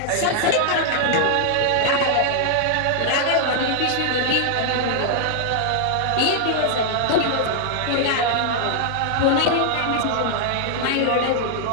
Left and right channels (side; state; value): both; different; correlation -0.01